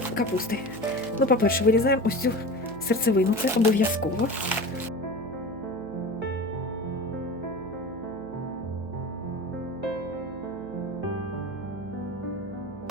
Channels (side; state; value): right; noise; hum, 16 dB below the sound